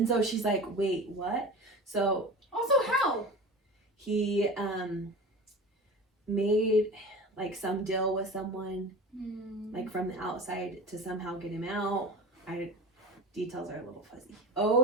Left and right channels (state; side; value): normal; both; correlation 0.34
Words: so she's like, wait, what? So Also, how? he made, like, some deal with someone, like, from the outside to somehow get him out. Details are a little fuzzy.